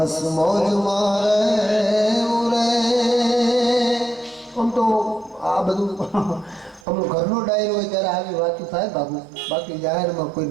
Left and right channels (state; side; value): drops out; left; at 6.9 s